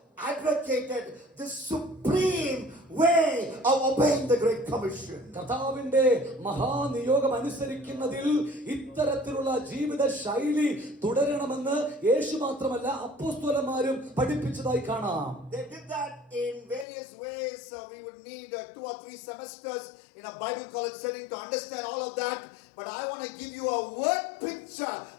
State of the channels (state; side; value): drops out; right; at 16.9 s